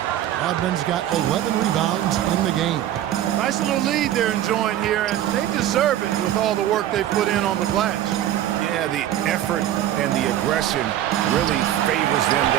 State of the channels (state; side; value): quieter; left; 12.2 dB